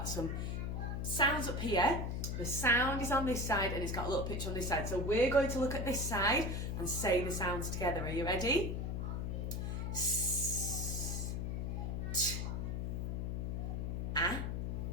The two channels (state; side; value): noise; left; hum, 2 dB below the sound